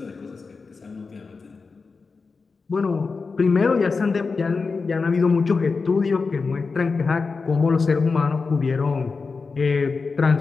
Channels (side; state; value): right; quieter; 4.5 dB